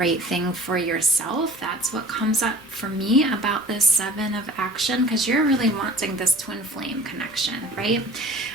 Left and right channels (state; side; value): normal; both; correlation 0.44